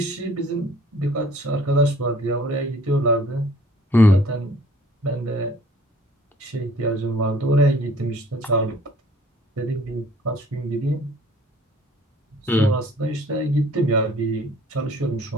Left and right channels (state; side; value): normal; both; correlation 0.54